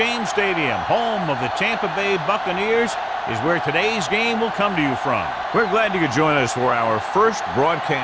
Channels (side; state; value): both; identical; correlation 1.00